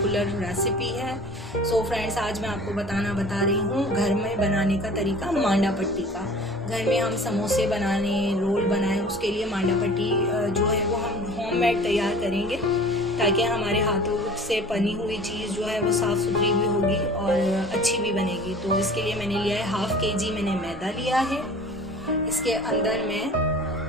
रेसिपी है। सो फ्रेंड्स, आज मैं आपको बता रही हूँ घर में बनाने का तरीका मांडा पट्टी का। घर में हम समोसे बनाने, रोल बनाएं, उसके लिए मांडा पट्टी जो है वो हम होममेड तैयार करेंगे ताकि हमारे हाथों से बनी हुई चीज़ जो है वो साफ़ सुथरी भी होगी और अच्छी भी बनेगी। तो इसके लिए मैंने लिया है 1/2 kg मैंने मैदा लिया है। इसके अंदर मैं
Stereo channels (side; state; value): both; normal; correlation 0.44